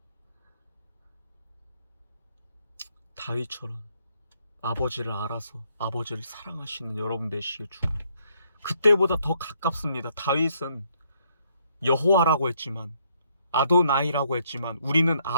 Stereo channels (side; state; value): both; inverted; correlation -0.70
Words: 다윗처럼 아버지를 알아서 아버지를 사랑하시는 여러분 되시길 축원합니다. 그때보다 더 가깝습니다. 다윗은 여호와라고 했지만, 아도나이라고 했지만, 우리는